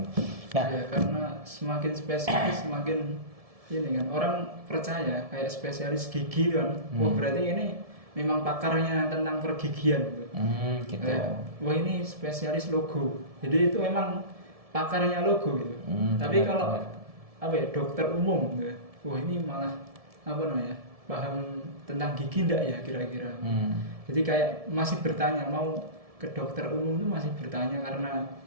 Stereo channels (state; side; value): late; left; 1.7 ms